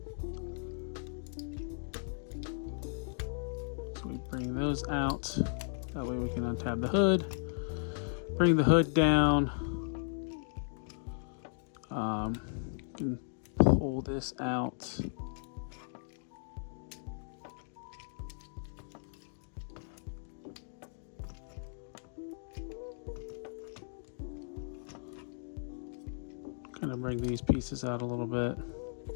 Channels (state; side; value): silent; right; digital silence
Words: So we bring those out. That way we can untab the hood. Bring the hood down. You can pull this out. Kind of bring these pieces out a little bit,